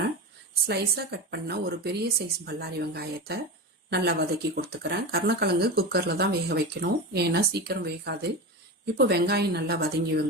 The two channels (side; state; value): both; normal; correlation 0.23